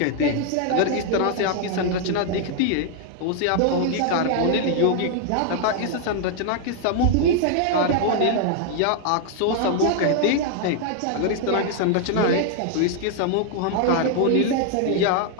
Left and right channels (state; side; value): different; both; correlation 0.00